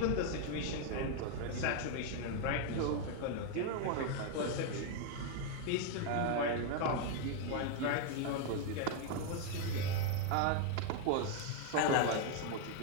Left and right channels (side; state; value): both; different; correlation 0.00